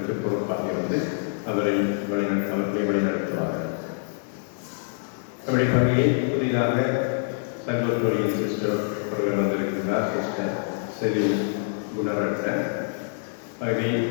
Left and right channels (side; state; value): right; silent; digital silence